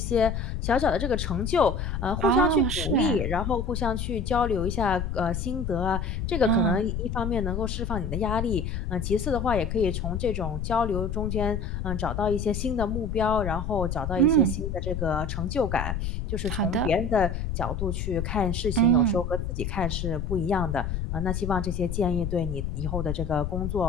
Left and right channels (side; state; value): left; noise; rumble, 3 dB below the sound